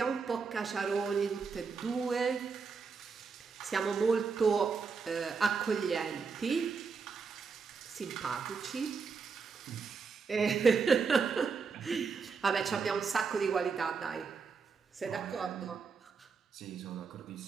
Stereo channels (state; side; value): quieter; left; 5.3 dB